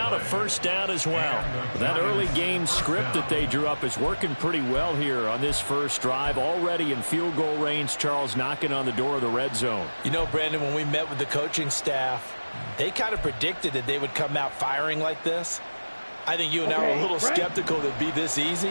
a 1st down as well. That early game script that they drew up is working pretty well here on this first drive. Already in field goal range, Charles, knocking on the door of the red zone. You know, Brandon, when we met with the coaching staff, they kind of predicted that they would come out firing like this. I think you and I were a little skeptical that it'd be this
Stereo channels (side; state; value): both; inverted; correlation -1.00